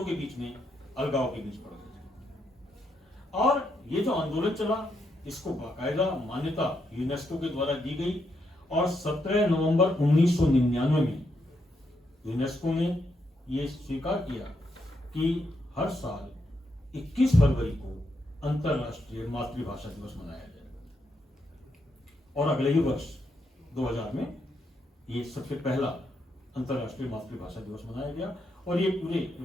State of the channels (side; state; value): both; normal; correlation 0.80